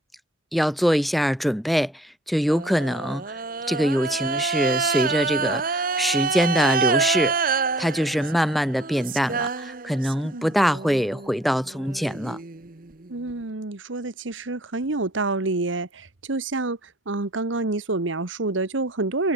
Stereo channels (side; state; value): both; normal; correlation 0.55